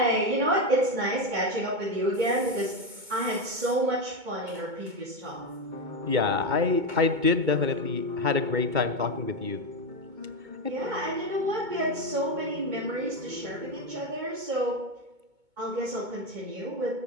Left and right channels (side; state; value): left; late; 2.2 ms